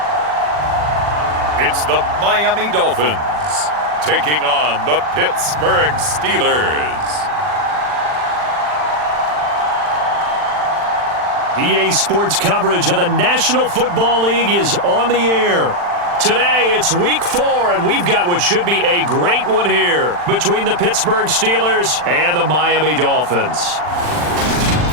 It's the Miami Dolphins taking on the Pittsburgh Steelers. EA Sports coverage of the National Football League is on the air. Today, it's Week 4, and we've got what should be a great one here between the Pittsburgh Steelers and the Miami Dolphins.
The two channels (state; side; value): late; left; 40 ms